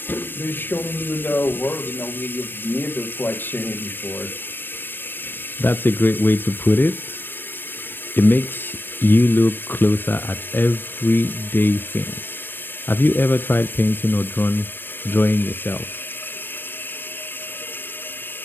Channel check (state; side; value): late; right; 0.097 ms